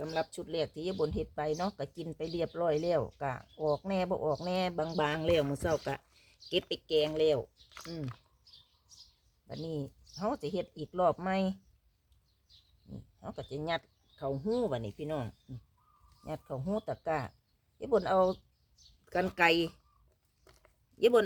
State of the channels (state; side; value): identical; both; correlation 1.00